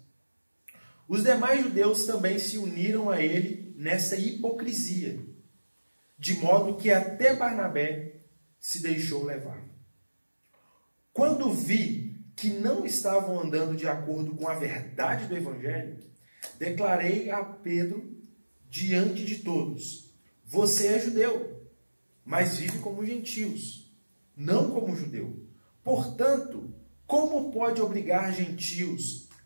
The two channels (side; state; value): both; inverted; correlation -1.00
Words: Os demais judeus também se uniram a ele nessa hipocrisia, de modo que até Barnabé se deixou levar. Quando vi que não estavam andando de acordo com a verdade do Evangelho, declarei a Pedro diante de todos: você é judeu, mas vive como gentios, não como judeu. Portanto, como pode obrigar gentios